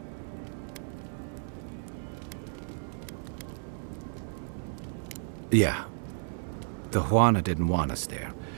Yeah. The Huana didn't want us there.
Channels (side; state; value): left; silent; digital silence